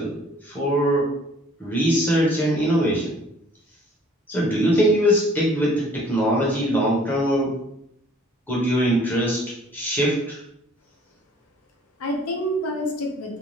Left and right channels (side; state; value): both; normal; correlation 0.55